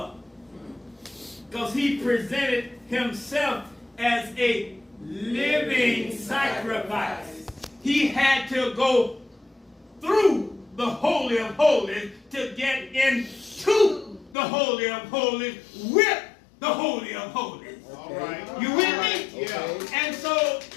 because he presented himself as a living sacrifice. He had to go through the Holy of Holies to get into the Holy of Holies with the Holy of Holies. All right. You with me? Yeah. And so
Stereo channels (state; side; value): drops out; right; at 14.4 s